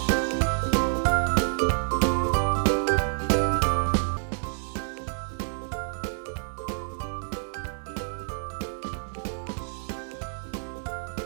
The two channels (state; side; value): silent; left; 59 dB below the other